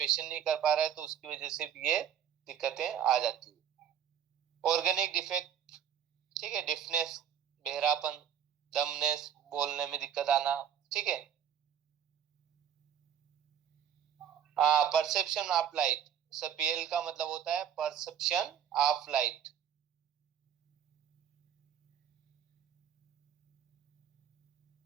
नहीं कर पा रहा है तो उसकी वजह से भी ये दिक्कतें आ जाती है। ऑर्गेनिक डिफेक्ट, ठीक है, डिफनेस, बहरापन, दमनेस, बोलने में दिक्कत आना, ठीक है। परसेप्शन ऑफ लाइट, पीएल का मतलब होता है परसेप्शन ऑफ लाइट।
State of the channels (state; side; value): quieter; left; 9.2 dB